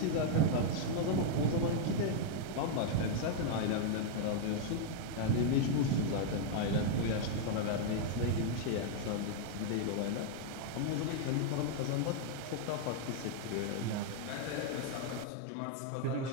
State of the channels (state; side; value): different; both; correlation -0.01